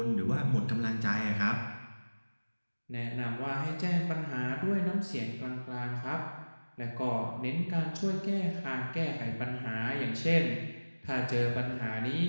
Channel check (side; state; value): both; inverted; correlation -1.00